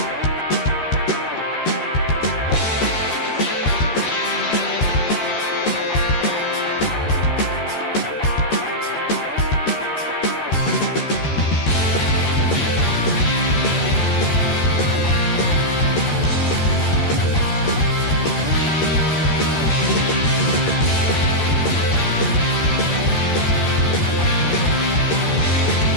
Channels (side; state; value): right; late; 13 ms